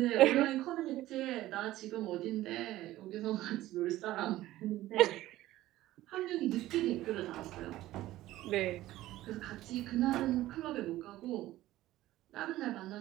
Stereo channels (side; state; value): left; quieter; 15.6 dB